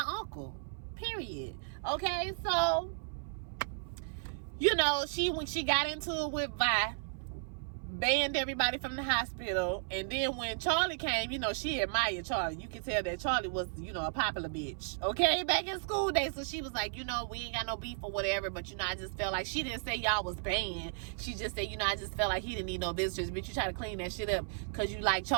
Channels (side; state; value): left; silent; 55 dB below the other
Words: uncle, period. Okay, so, you know, when she got into it with Vi, banned everybody from the hospital, and then when Charlie came, you know, she admired Charlie. You can tell that Charlie was, you know, a popular bitch, okay, back in school days. So she was like, you know, we ain't got no beef or whatever, but, you know, I just felt like, she didn't say y'all was banned. She just said, you know, I just felt like he didn't need no visitors, but you try to clean that shit up because you like